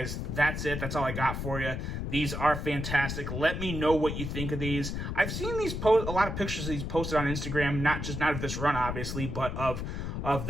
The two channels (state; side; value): noise; left; rumble, 4 dB below the sound